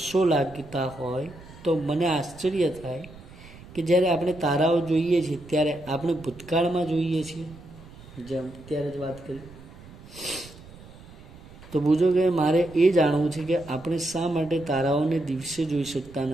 લાગતા હોય તો મને આશ્ચર્ય થાય કે જ્યારે આપણે તારાઓ જોઈએ છીએ ત્યારે આપણે ભૂતકાળમાં જોઈએ છીએ, જેમ ત્યારે જ વાત કરી. તો બુજો કે મારે એ જાણવું છે કે આપણે શા માટે તારાઓને દિવસે જોઈ શકતા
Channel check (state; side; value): noise; right; rumble, 19 dB below the sound